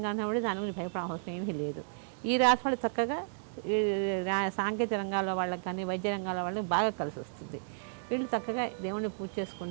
ఉన్నప్పుడు దాని గురించి భయపడే అవసరం ఏమీ లేదు. ఈ రాశి వాళ్ళు చక్కగా సాంకేతిక రంగాల వాళ్ళకి కానీ వైద్య రంగాల వాళ్ళకి బాగా కలిసి వస్తుంది. వీళ్ళు చక్కగా దేవుణ్ణి పూజ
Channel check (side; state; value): left; silent; digital silence